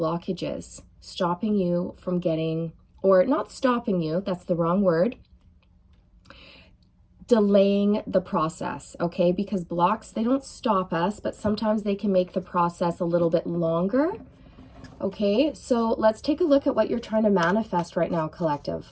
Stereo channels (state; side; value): identical; both; correlation 1.00